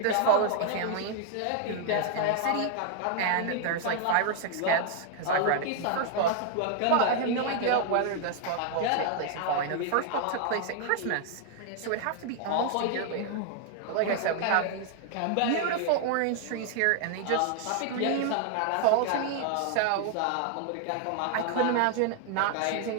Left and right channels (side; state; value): both; different; correlation 0.00